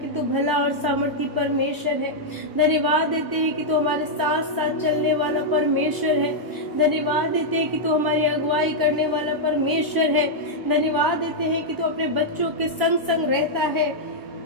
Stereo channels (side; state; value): left; late; 1.0 ms